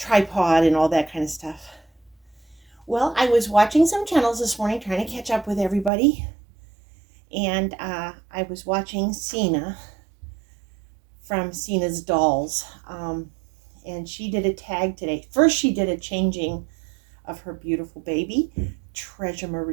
and all that kind of stuff. Well, I was watching some channels this morning trying to catch up with everybody, and I was watching Seena from Seena's Dolls, and she did a tag today. First, she did a changing of her beautiful baby, Treasure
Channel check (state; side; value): drops out; left; at 5.9 s